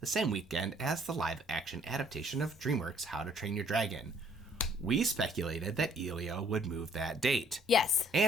same weekend as the live-action adaptation of DreamWorks' How to Train Your Dragon. We speculated that Elio would move that date. Yes.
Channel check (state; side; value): normal; both; correlation 0.62